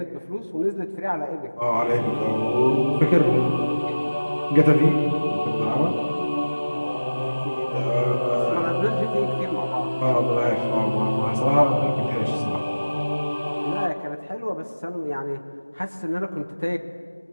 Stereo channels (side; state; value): both; inverted; correlation -1.00